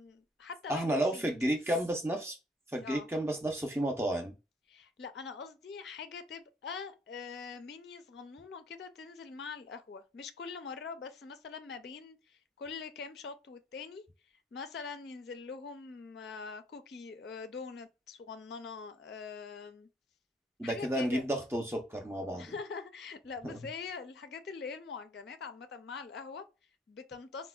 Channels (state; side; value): normal; both; correlation 0.64